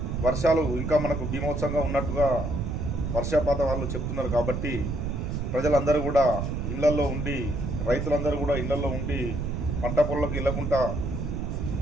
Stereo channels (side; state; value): right; noise; rumble, 2 dB below the sound